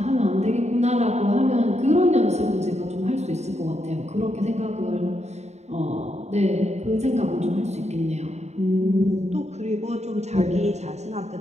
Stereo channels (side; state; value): left; late; 0.32 ms